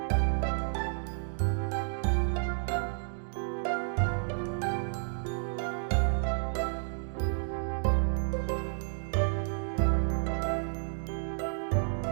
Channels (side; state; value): left; silent; digital silence